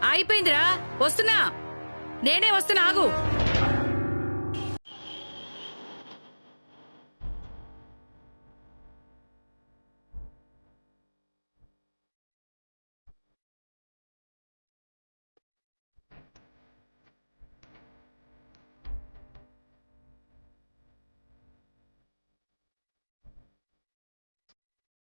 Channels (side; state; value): both; inverted; correlation -1.00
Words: అయిపోయిందిరా, వస్తున్నా. నేనే వస్తున్నా, ఆగు.